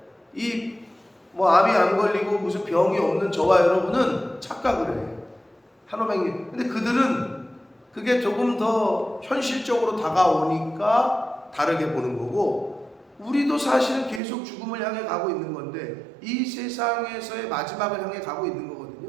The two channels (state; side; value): drops out; left; at 14.2 s